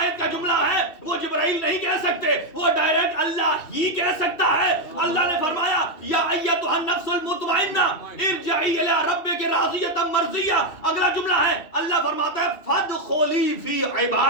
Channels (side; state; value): right; late; 2.7 ms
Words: کا جملہ ہے وہ جبرائیل نہیں کہہ سکتے, وہ ڈائریکٹ اللہ ہی کہہ سکتا ہے. اللہ نے فرمایا یا ایتھا النفس المطمئنہ ارجعی الی ربک راضیۃ مرضیہ. اگلا جملہ ہے اللہ فرماتا ہے فادخلی فی